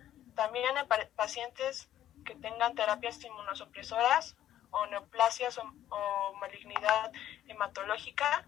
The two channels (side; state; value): right; quieter; 12.0 dB